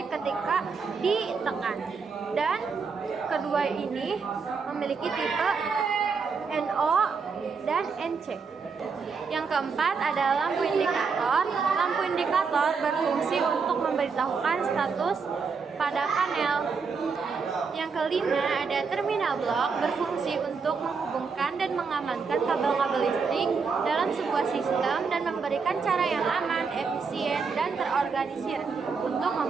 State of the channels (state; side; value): quieter; left; 5.2 dB